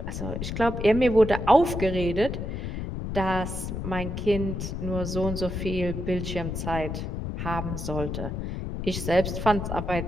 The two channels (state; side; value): noise; left; rumble, 4 dB below the sound